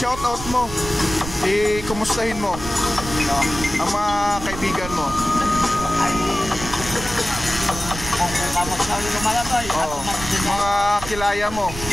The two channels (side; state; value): right; noise; rumble, 10 dB below the sound